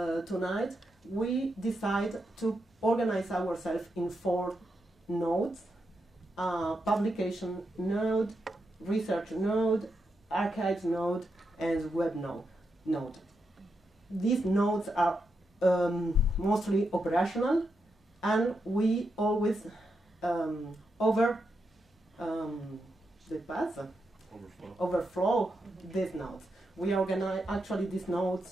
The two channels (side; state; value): both; normal; correlation 0.84